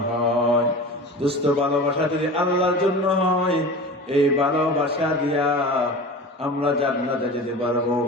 হয় দুস্থ ভালোবাসা যদি আল্লাহর জন্য হয় এই ভালোবাসা দিয়া আমরা জান্নাতে যেতে পারবো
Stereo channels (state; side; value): normal; both; correlation 0.34